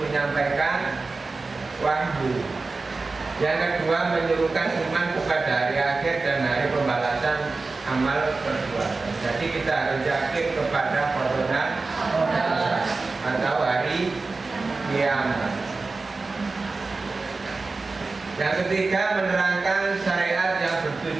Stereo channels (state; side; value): quieter; left; 3.8 dB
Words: menyampaikan wahyu. Yang kedua, menyerukan iman kepada hari akhir dan hari pembalasan amal perbuatan. Jadi kita harus yakin kepada qada atau hari kiamat. Yang ketiga, menerangkan syariat yang